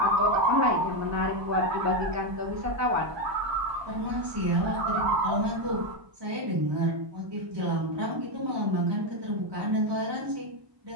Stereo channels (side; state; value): left; late; 1.2 ms